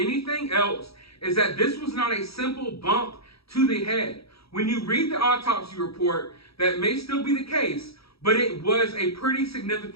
else is that this was not a simple bump to the head. When you read the autopsy report, that may still be the case, but it was a pretty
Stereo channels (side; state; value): right; late; 0.77 ms